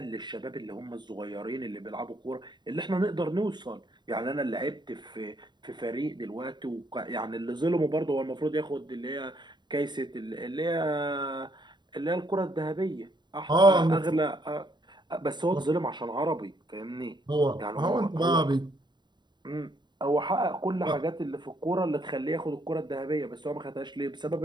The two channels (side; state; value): left; late; 0.21 ms